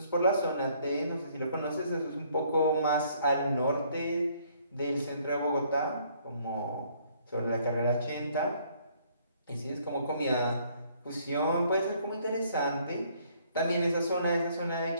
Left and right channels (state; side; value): inverted; both; correlation -0.64